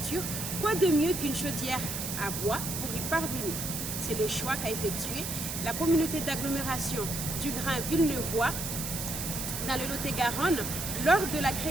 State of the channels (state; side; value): noise; right; hiss, 4 dB below the sound